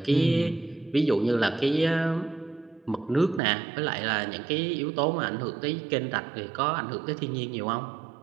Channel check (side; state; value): left; drops out; at 3.4 s